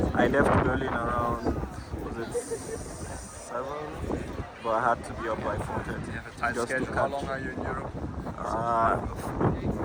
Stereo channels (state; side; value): identical; both; correlation 1.00